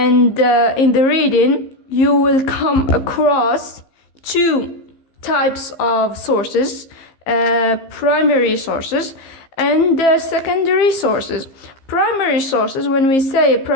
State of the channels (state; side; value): late; right; 15 ms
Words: in the reading you will come across 2 types of sources, primary sources and secondary sources. Primary sources, when we say a